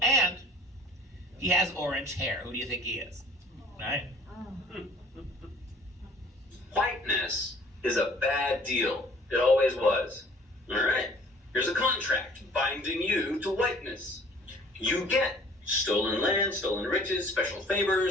and he has orange hair. Who do you think he is? Right? Whiteness is a bad deal. It always was. All right. Here's a contract binding you to whiteness. You get stolen land, stolen riches, special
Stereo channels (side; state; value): both; normal; correlation 0.52